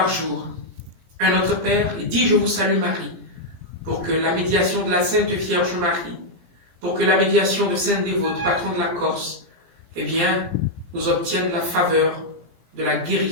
jour, un Notre Père et 10 Je vous salue Marie, pour que la médiation de la Sainte Vierge Marie, pour que la médiation de Sainte Dévote, patron de la Corse, eh bien, nous obtienne la faveur de la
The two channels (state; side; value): late; left; 17 ms